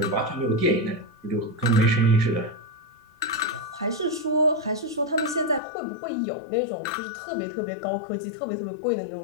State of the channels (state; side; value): drops out; right; at 5.6 s